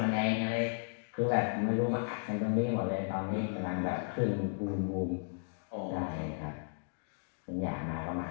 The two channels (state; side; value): silent; right; digital silence